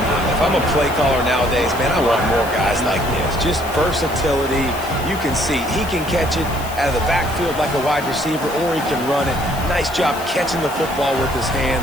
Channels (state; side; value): noise; left; hiss, 15 dB below the sound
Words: If I'm a play caller nowadays, man, I want more guys like this. Just versatility. You can see he can catch it out of the backfield like a wide receiver, or he can run it. Nice job catching the football with his